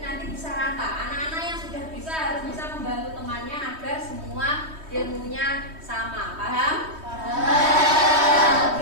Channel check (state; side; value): late; left; 3.2 ms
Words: nanti bisa rata. Anak-anak yang sudah bisa harus bisa membantu temannya agar semua ilmunya sama. Paham?